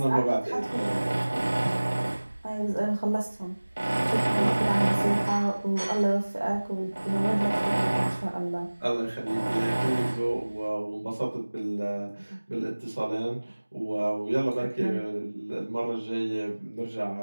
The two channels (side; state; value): both; inverted; correlation -1.00